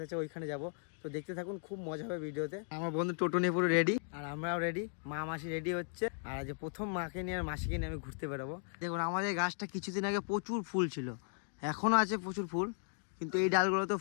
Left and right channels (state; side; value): silent; right; 53 dB below the other